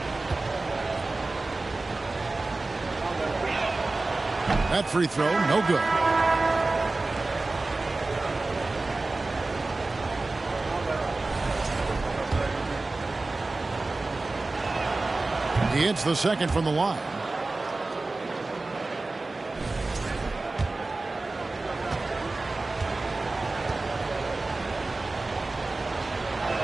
That free throw, no good. He hits the second from the line.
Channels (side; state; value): left; quieter; 3.3 dB